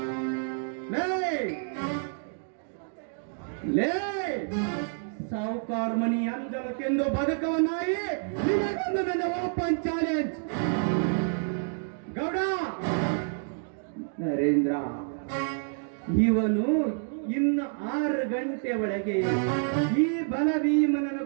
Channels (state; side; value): silent; left; 59 dB below the other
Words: ಲೇ ಸಾವುಕಾರ ಮನಿ ಅಂಜಲಕ್ಕೆಂದು ಬದುಕುವ ನಾಯಿ, ನಿನಗೊಂದು ನನ್ನ ಓಪನ್ ಚಾಲೆಂಜ್. ಗೌಡ ನರೇಂದ್ರ, ಇವನು ಇನ್ನು 6 ಗಂಟೆ ಒಳಗೆ ಈ ಬಲಭೀಮನನ್ನು